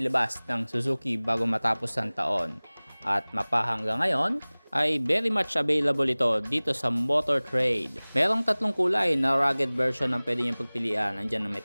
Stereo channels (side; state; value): both; inverted; correlation -1.00